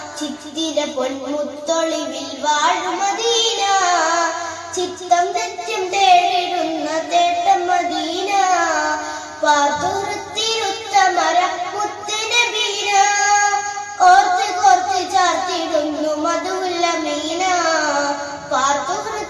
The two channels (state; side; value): identical; both; correlation 1.00